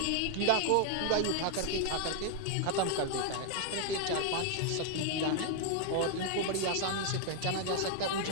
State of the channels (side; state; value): both; different; correlation 0.00